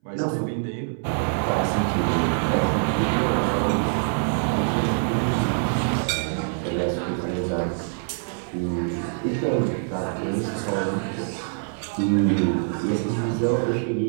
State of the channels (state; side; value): silent; left; 62 dB below the other